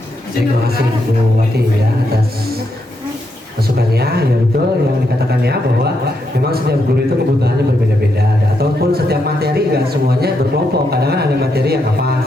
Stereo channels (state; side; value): normal; both; correlation 0.80